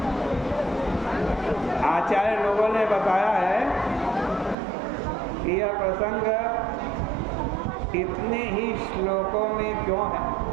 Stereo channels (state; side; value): drops out; left; at 4.5 s